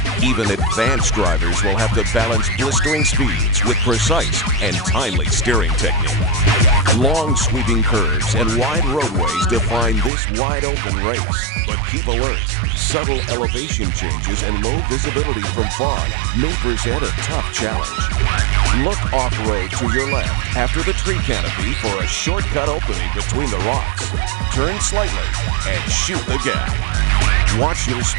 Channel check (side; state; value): left; drops out; at 10.1 s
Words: Even advanced drivers will have to balance blistering speeds with precise and timely steering technique. Long sweeping curves and wide roadways define this wide-open race. But keep alert. Subtle elevation changes and low visibility from fog may present a tough challenge. Look off-road to your left after the tree canopy for a shortcut opening between the rocks. Turn slightly and shoot the gap. Watch your